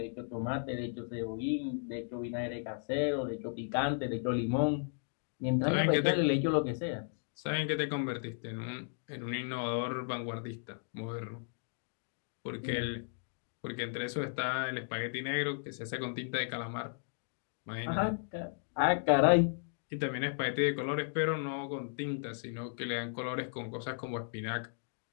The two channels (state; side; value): silent; right; digital silence